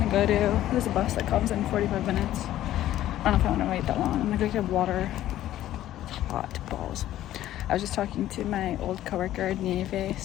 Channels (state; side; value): quieter; right; 13.3 dB